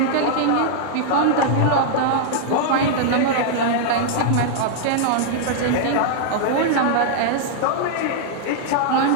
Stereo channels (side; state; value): both; different; correlation -0.01